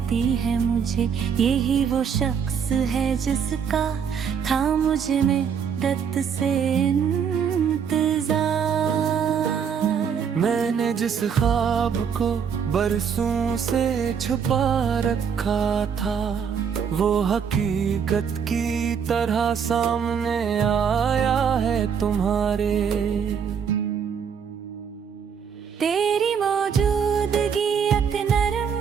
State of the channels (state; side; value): quieter; left; 7.1 dB